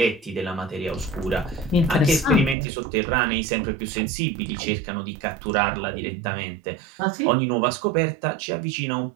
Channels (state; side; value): drops out; left; at 2.6 s